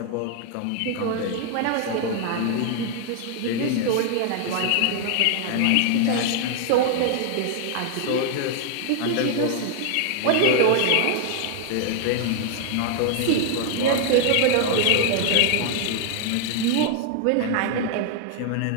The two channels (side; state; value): both; different; correlation 0.00